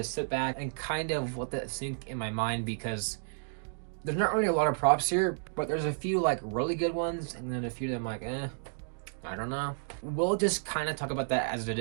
sit back and kind of let that sink in my mind because there's not really a lot of props here, but there's a few like really good ones and then a few that I'm like, I don't know. We'll just kind of talk about that as it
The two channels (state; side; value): silent; left; digital silence